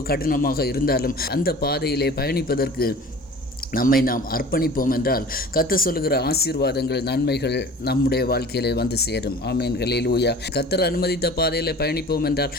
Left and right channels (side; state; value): both; normal; correlation 0.43